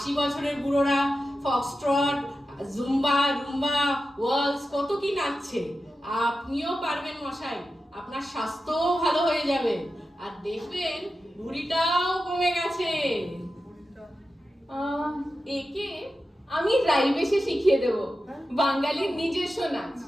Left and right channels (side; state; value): both; normal; correlation 0.91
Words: বছরের বুড়োরা ফক্সট্রট জুম্বা রুম্বা ওয়ালস কত কি নাচছে। আপনিও পারবেন মশাই, আপনার স্বাস্থ্যও ভালো হয়ে যাবে, আর দেখবেন ভুঁড়িটাও কমে গেছে। একে আমি রাইবেশে শিখিয়ে দেব বাঙালির নিজস্ব নাচ।